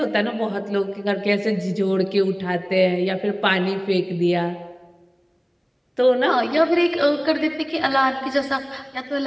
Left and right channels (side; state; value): both; identical; correlation 1.00